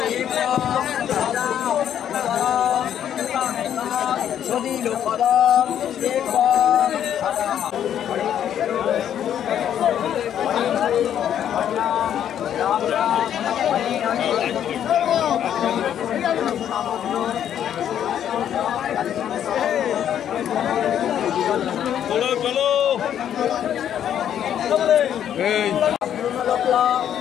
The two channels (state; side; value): quieter; right; 9.9 dB